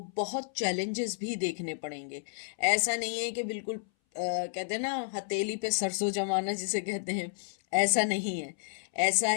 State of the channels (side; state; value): right; silent; 57 dB below the other